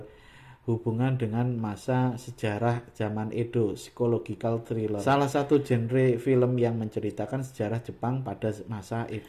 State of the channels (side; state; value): both; identical; correlation 1.00